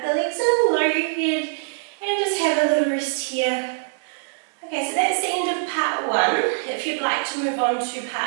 the legs in, lower your head, and just have a little rest here. Okay, so that's the end of part 1. If you'd like to move on to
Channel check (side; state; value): left; silent; digital silence